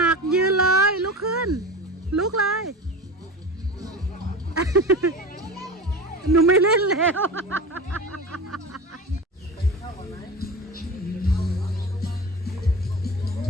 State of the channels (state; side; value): normal; both; correlation 0.30